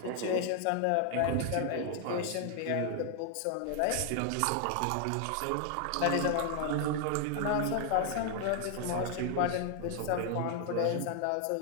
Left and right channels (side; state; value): both; different; correlation 0.00